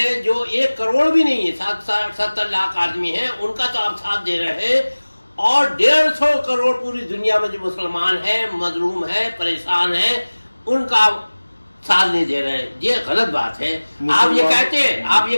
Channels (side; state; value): both; inverted; correlation -1.00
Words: جو 1 کروڑ بھی نہیں ہے, 70 لاکھ آدمی ہیں, ان کا تو آپ ساتھ دے رہے ہیں, اور 150 کروڑ پوری دنیا میں جو مسلمان ہیں, مظلوم ہیں, پریشان ہیں, ان کا ساتھ نہیں دے رہے. یہ غلط بات ہے. آپ